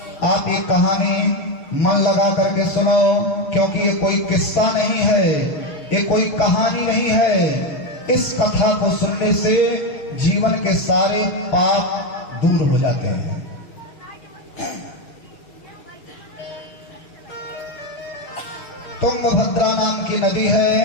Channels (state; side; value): late; right; 6.6 ms